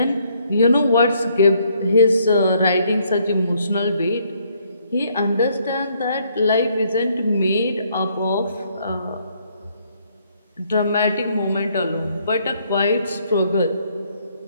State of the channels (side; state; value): both; inverted; correlation -0.68